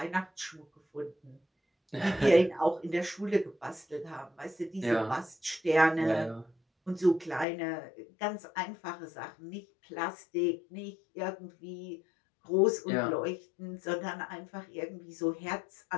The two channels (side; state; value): right; drops out; at 7.5 s